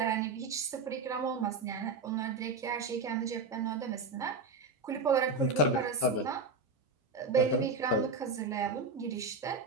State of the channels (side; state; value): left; quieter; 3.7 dB